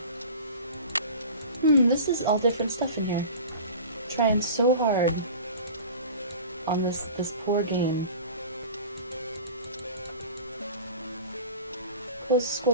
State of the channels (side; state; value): both; inverted; correlation -0.38